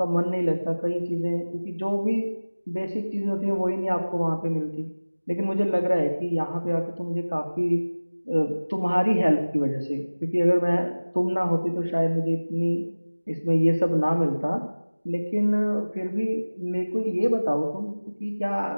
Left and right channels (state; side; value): inverted; both; correlation -1.00